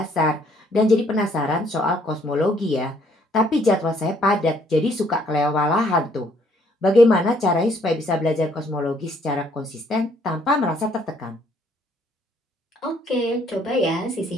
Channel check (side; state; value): both; normal; correlation 0.65